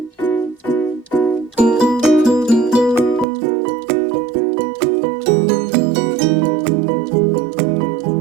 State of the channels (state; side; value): drops out; left; at 3.2 s